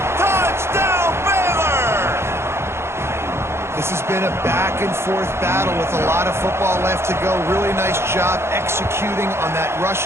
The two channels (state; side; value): late; left; 0.12 ms